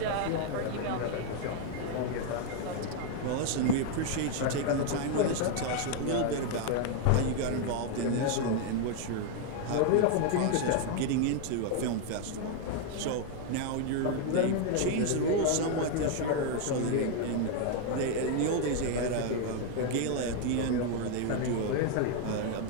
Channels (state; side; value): different; both; correlation 0.00